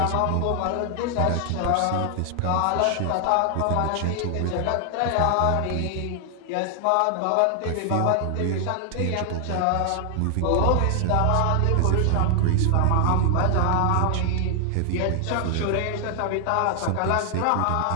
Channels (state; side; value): different; both; correlation 0.00